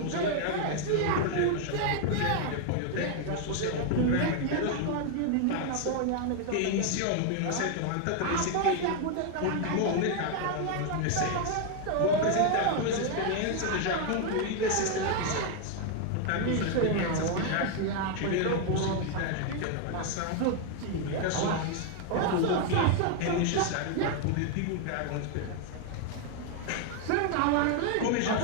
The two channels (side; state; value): both; different; correlation 0.00